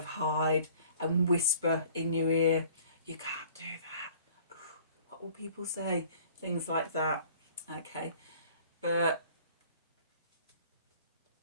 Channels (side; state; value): both; inverted; correlation -0.52